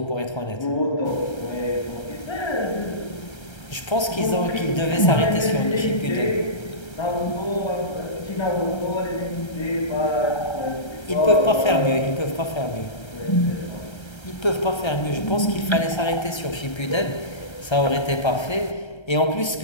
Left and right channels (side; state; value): right; late; 1.3 ms